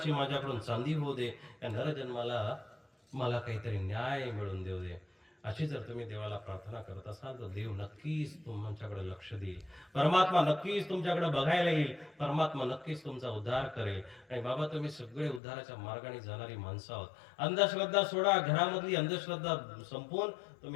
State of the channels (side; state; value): right; drops out; at 15.4 s